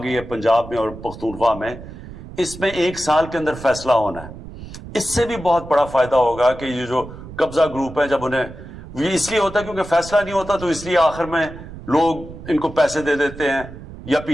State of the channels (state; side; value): noise; right; rumble, 14 dB below the sound